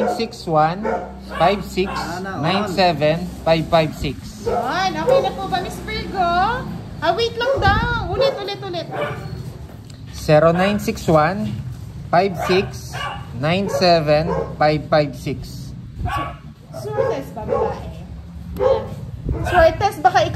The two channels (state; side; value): identical; both; correlation 1.00